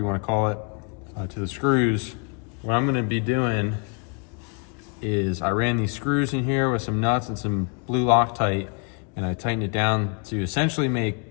wanna call it, to the screws, what I'm gonna be doing is I ran these screws in here with some nuts and some blue Loctite, and I tightened it down to essentially make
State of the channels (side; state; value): right; quieter; 35.5 dB